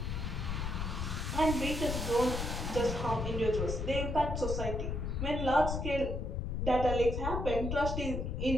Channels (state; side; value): noise; left; rumble, 2 dB below the sound